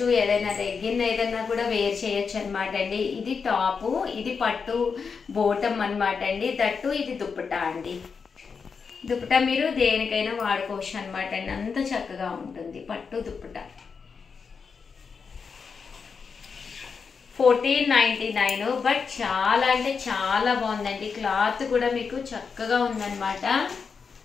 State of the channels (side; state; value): right; quieter; 5.6 dB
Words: ఏదైనా లెగ్గిన్ ఏదైనా కూడా వేర్ చేయొచ్చు అనమాట అండి. ఇది టాపు, ఇది పట్టు బోటమ్ అనమాట అండి. దట్టు ఇది దుప్పటా అండి. దుప్పటా మీరు దేనికైనా వాడుకోవచ్చు అనమాట అండి. అంత చక్కగా ఉంటుంది పట్టు దుప్పటా. 1499 బట్ చాలా అంటే చాలా బాగుందండి. క్లాత్ కూడా మీకు చక్కగా ఉందన్నమాట.